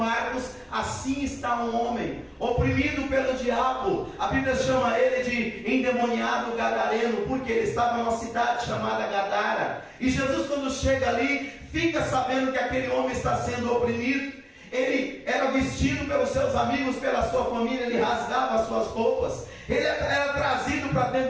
assim está um homem oprimido pelo diabo. A Bíblia chama ele de endemoniado gadareno, porque ele estava numa cidade chamada Gadara. E Jesus, quando chega ali, fica sabendo que aquele homem está sendo oprimido. Ele era vestido pelos seus amigos, pela sua família, ele rasgava as suas roupas, ele era trazido para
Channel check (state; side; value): identical; both; correlation 1.00